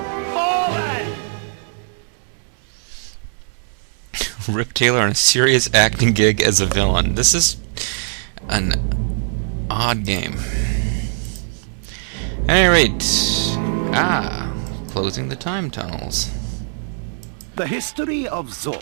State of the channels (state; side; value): silent; left; 64 dB below the other